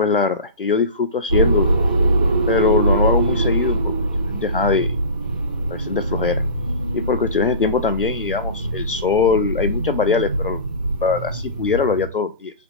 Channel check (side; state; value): both; inverted; correlation -0.31